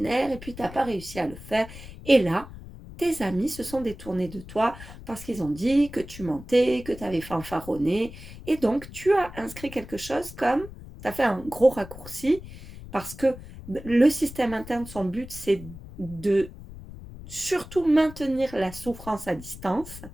et puis tu n'as pas réussi à le faire. Et là, tes amis se sont détournés de toi parce qu'ils ont dit que tu mentais, que tu avais fanfaronné, et donc tu as inscrit quelque chose comme, tu as fait un gros raccourci, parce que le système interne, son but, c'est de surtout maintenir la souffrance à distance.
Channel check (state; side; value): noise; left; rumble, 15 dB below the sound